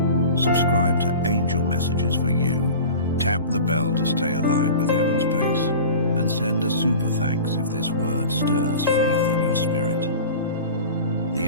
Subscribe to angel messages for you. Tap the bell to stay aligned with heaven's pace. And send a super thanks if this word stirs faith in your spirit. The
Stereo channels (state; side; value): inverted; both; correlation -0.36